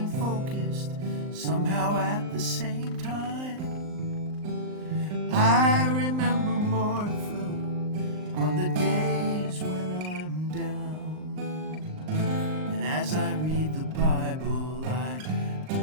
focused, somehow at the same time. I remember Martha on the days when I'm down, and as I read the Bible, I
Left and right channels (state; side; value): late; left; 39 ms